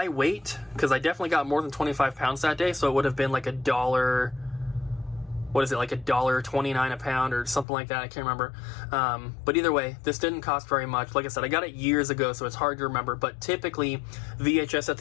weight, because I definitely got more than 25 pounds that day, so it would have been like $1. What is it, like $1.29 a pound or something like that? I can't remember. But either way, this didn't cost very much. Like I said, I got it years ago, so it's hard to remember. But typically, VHS at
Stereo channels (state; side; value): drops out; right; at 7.7 s